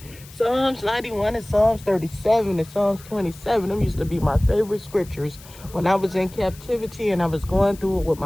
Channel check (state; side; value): noise; left; hiss, 20 dB below the sound